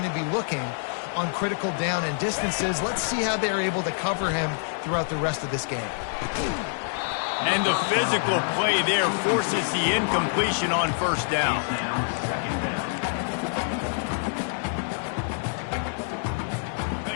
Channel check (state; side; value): silent; right; digital silence